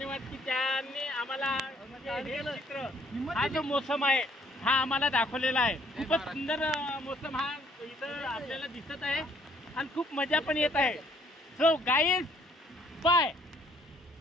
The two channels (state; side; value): normal; both; correlation 0.64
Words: की त्यांनी आम्हाला हे चित्र हा जो मोसम आहे हा आम्हाला दाखवलेला आहे। खूपच सुंदर मोसम हा इथं आपल्याला दिसत आहे आणि खूप मजा पण येत आहे। So guys bye.